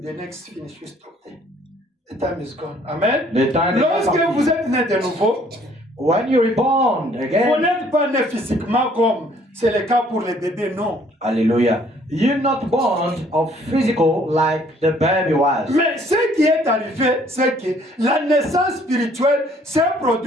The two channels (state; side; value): normal; both; correlation 0.61